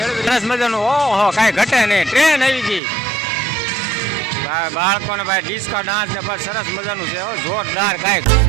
સરસ મજાનો. ઓહો, કાંઈ ઘટે નહીં. ટ્રેન આવી ગઈ ભાઈ. બાળકોને ભાઈ ડિસ્કો ડાન્સ ને બસ સરસ મજાનું છે. જોરદાર. કાંઈ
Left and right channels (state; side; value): drops out; left; at 2.8 s